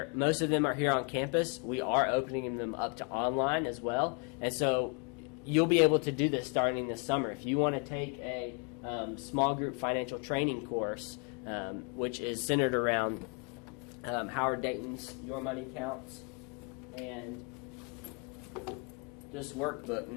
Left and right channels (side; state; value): right; quieter; 36.3 dB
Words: most of them are here on campus, we are opening them up to online as well. And so you'll be able to do this starting this summer. If you want to take a small group financial training course, which is centered around Howard Dayton's Your Money Counts, and this workbook,